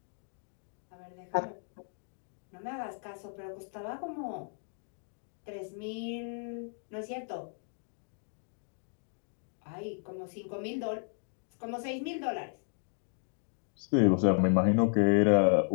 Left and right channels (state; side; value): silent; right; 55 dB below the other